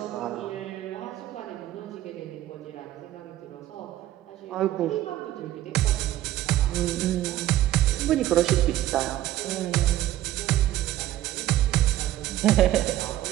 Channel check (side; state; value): left; quieter; 14.0 dB